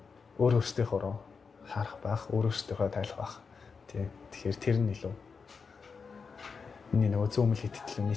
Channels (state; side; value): quieter; right; 5.3 dB